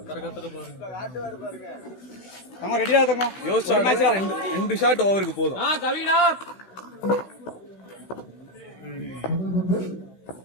ரெடியா தங்க யோசிச்சா ரெண்டு ஷாட் ஓவருக்கு போதும்.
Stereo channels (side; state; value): right; late; 16 ms